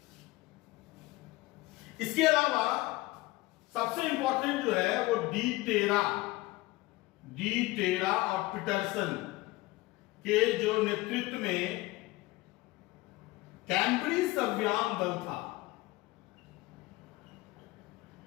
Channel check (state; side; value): quieter; right; 20.1 dB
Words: इसके अलावा सबसे इंपॉर्टेंट जो है वो डी टेरा और पीटरसन के जो नेतृत्व में कैम्ब्रिज अभियान दल था।